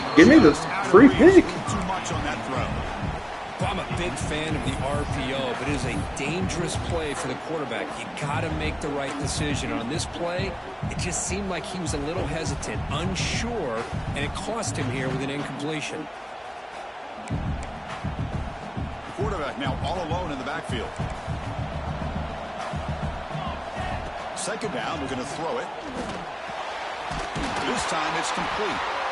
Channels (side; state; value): both; identical; correlation 1.00